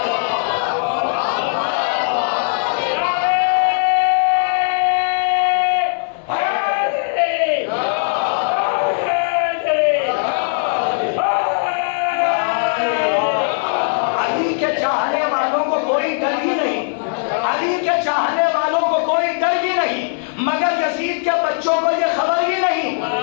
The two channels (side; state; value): right; silent; 59 dB below the other